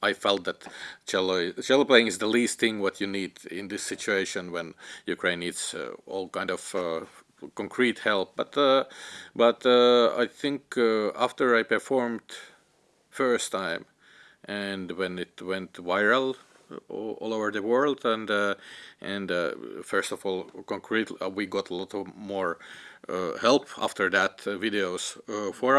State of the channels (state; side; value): identical; both; correlation 1.00